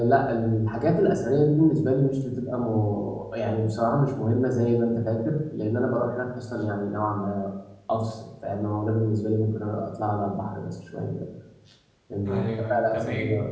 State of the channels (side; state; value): both; identical; correlation 1.00